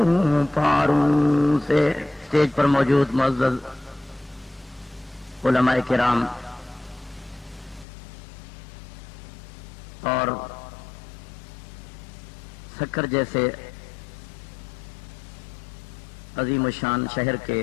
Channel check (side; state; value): right; drops out; at 7.9 s